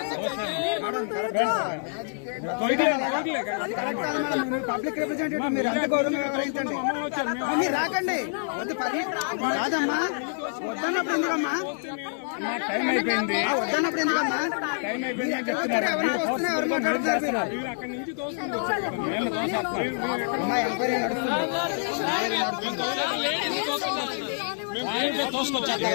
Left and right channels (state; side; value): silent; right; digital silence